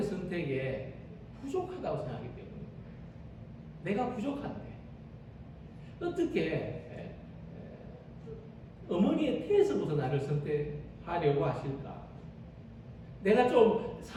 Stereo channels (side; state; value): both; identical; correlation 1.00